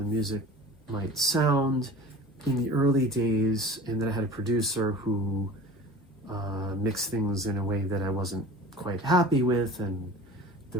music might sound in the early days, and that I had a producer who mixed things in a way that I wasn't quite happy with, and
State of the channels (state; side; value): normal; both; correlation 0.40